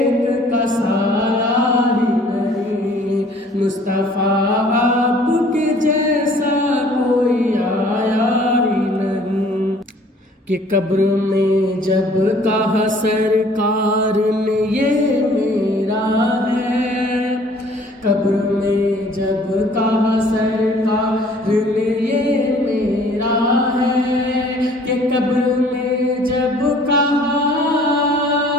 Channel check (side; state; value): both; normal; correlation 0.55